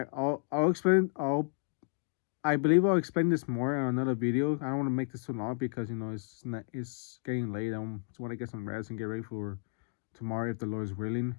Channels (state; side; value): silent; right; digital silence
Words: explain. I believe I'll explain this more on another video. I don't want to make this too long, because it's getting late. I just want to get some rest and get ready for tomorrow, if the Lord is willing.